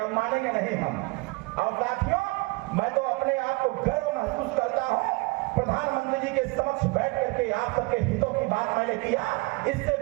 मानेंगे नहीं हम। और साथियों, मैं तो अपने आप को गर्व महसूस करता हूँ, प्रधानमंत्री जी के समक्ष बैठ करके आप सबके हितों की बात मैंने किया। इससे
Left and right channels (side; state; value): left; quieter; 25.6 dB